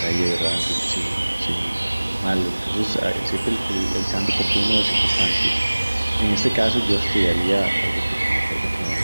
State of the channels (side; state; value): both; inverted; correlation -1.00